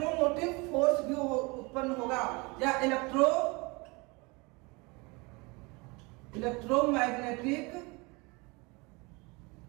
फोर्स भी उत्पन्न होगा, या इलेक्ट्रोमैग्नेटिक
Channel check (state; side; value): quieter; left; 26.9 dB